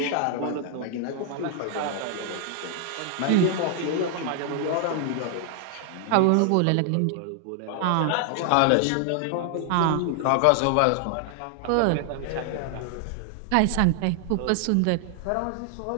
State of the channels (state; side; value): different; both; correlation 0.00